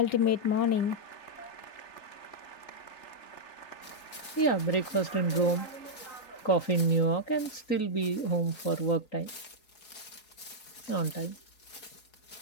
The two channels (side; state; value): right; late; 4.8 ms